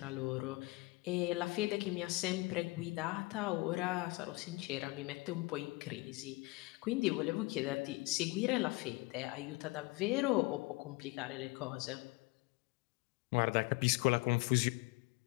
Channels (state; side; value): quieter; right; 23.2 dB